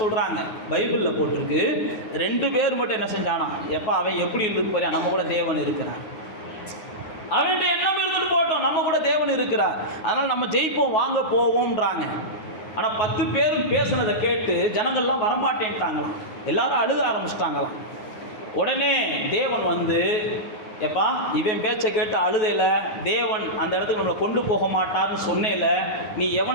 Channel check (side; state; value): right; late; 9.4 ms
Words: சொல்றாங்க. பைபிளில் போட்டிருக்கு 2 பேர் மட்டும் என்ன செஞ்சானா, எப்போ அவன் எப்படி இருந்து பாரு, நம்ம கூட தேவன் இருக்கிறார், அவன்கிட்ட எண்ணம் இருந்துட்டு போட்டோம், நம்ம கூட தேவன் இருக்கிறார், அதனால் நம்ம ஜெயிப்போம் வாங்க போவோம்ன்றாங்க. ஆனால் 10 பேரும் பேசுனதை கேட்டு ஜனங்கள்லாம் வரமாட்டேன்ட்டாங்களாம், எல்லாரும் அழுக ஆரம்பிச்சிட்டாங்களாம். உடனே தேவன் வந்து, எப்பா இவன் பேச்சை கேட்டு அழுதையில தேவன் அந்த இடத்துக்கு நம்மளை கொண்டு போக மாட்டார்னு சொன்னேல, நீ